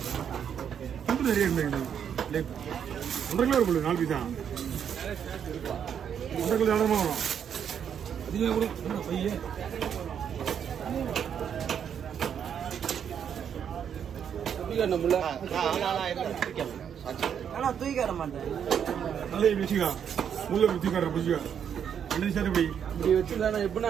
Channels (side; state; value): left; quieter; 8.2 dB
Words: ரொம்ப நிறைய இருந்தது. 1.5 கிலோ இருக்கும் 4 பீஸ் தான், 1.5 கிலோ இடமா வரும். அதிகமாக கூட பையன் தூக்கிட மாட்டேன். நல்லா வச்சுக்கா, முள்ள வச்சு காட்டுற வச்சுக்கா. 2 சார் இப்படி இப்படி வச்சுருந்தா